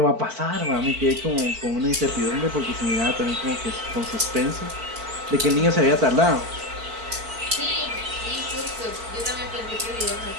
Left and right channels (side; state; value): left; late; 4.5 ms